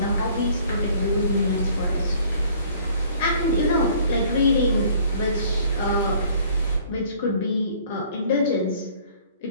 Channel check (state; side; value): inverted; both; correlation -0.56